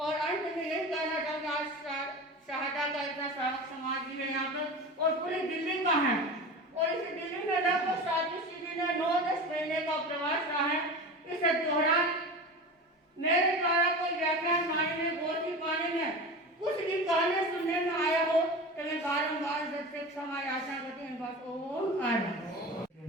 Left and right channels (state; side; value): normal; both; correlation 0.30